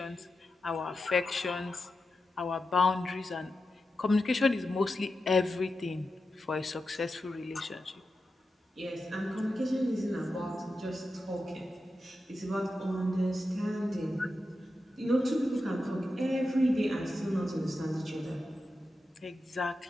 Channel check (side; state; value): both; normal; correlation 0.90